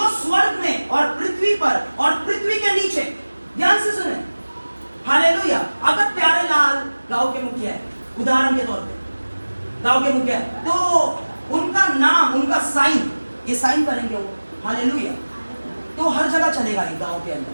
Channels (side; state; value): both; inverted; correlation -1.00